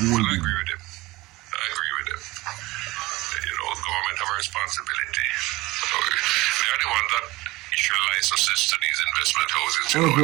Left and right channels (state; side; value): quieter; left; 20.4 dB